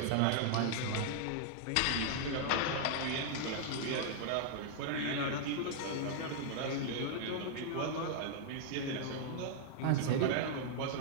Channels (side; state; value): both; different; correlation -0.01